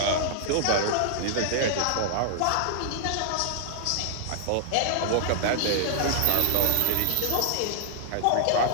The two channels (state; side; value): different; both; correlation -0.01